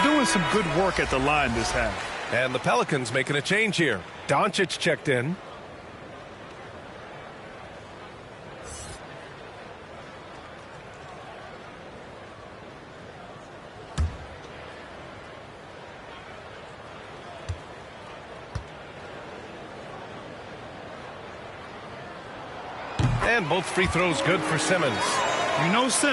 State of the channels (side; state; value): both; identical; correlation 1.00